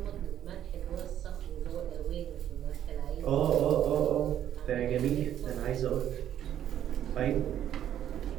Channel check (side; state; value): left; quieter; 10.8 dB